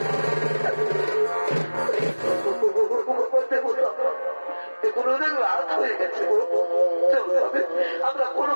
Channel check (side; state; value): both; inverted; correlation -1.00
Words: এখন অনেক রাত হয়ে গেছে, আমরা